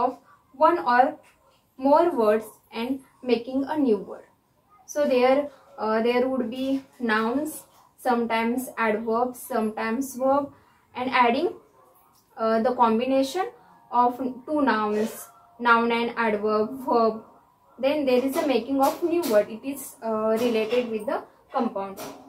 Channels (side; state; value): both; identical; correlation 1.00